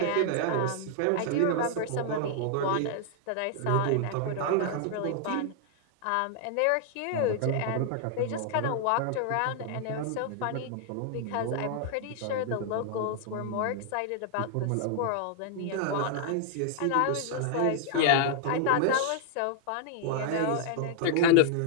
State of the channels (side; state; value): both; different; correlation -0.01